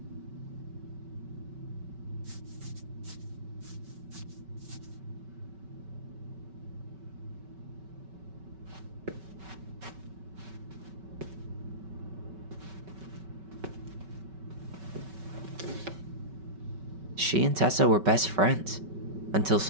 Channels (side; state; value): left; late; 5.3 ms